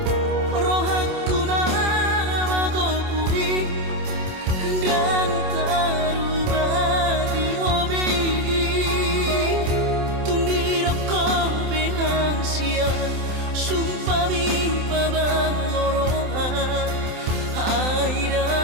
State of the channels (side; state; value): left; late; 27 ms